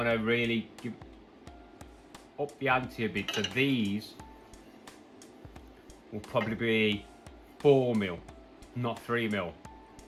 to really give up the ante a bit. So these will probably be 4mm, not 3mm.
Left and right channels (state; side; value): identical; both; correlation 1.00